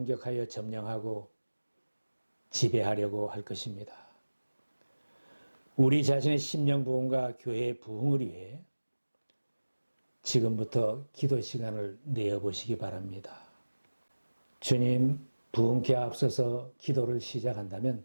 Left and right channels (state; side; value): inverted; both; correlation -1.00